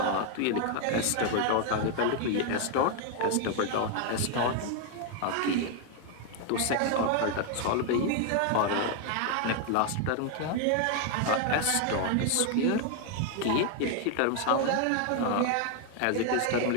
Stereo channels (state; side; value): different; both; correlation 0.00